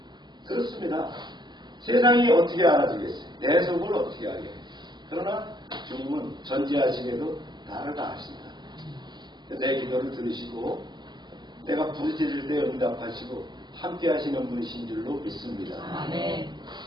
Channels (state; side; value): late; left; 0.21 ms